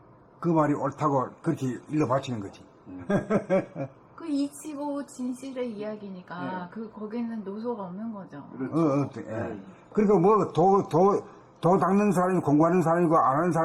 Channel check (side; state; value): both; identical; correlation 1.00